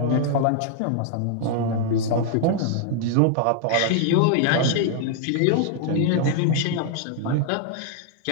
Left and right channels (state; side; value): different; both; correlation 0.00